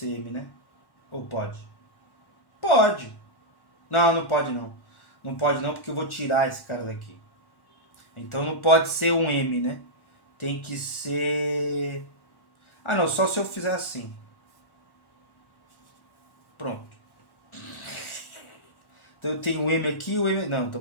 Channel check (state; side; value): late; right; 1.1 ms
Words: M, né? Ou pode? Pode. Não, não pode não. Não pode não, porque eu vou tirar esse cara daqui. Então não pode ser um M, né? Tem que ser... Ah, não. Só se eu fizer assim. Pronto. Então eu tenho o M aqui e o M... Não, tô